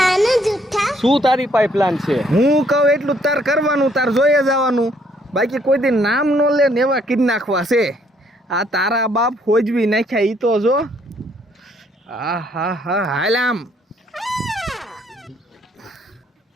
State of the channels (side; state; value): both; normal; correlation 0.67